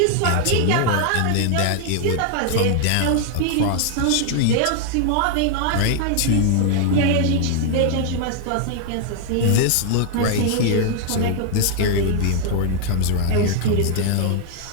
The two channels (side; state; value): both; different; correlation 0.00